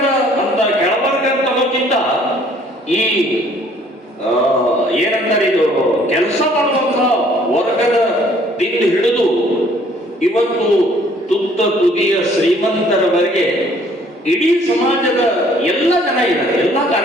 ಅನ್ನೋಕ್ಕಿಂತ ಈ ಏನಂತಾರೆ, ಇದು ಕೆಲಸ ಮಾಡುವಂತಹ ವರ್ಗದ ದಿಂದ ಹಿಡಿದು ಇವತ್ತು ತುತ್ತ ತುದಿಯ ಶ್ರೀಮಂತರವರೆಗೆ ಇಡೀ ಸಮಾಜದ ಎಲ್ಲ ಜನ ಇದ್ದಾರೆ, ಎಲ್ಲ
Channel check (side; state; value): both; normal; correlation 0.59